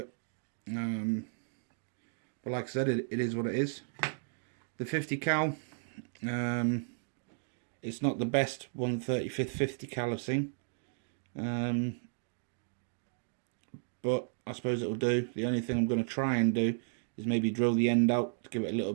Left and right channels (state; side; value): silent; left; digital silence